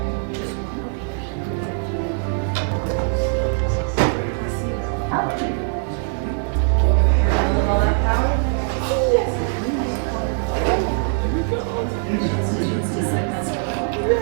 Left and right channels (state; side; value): silent; left; 56 dB below the other